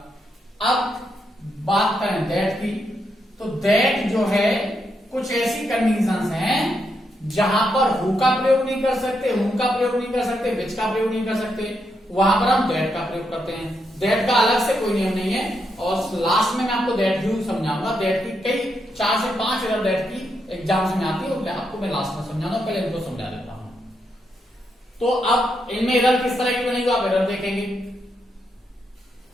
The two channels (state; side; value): normal; both; correlation 0.81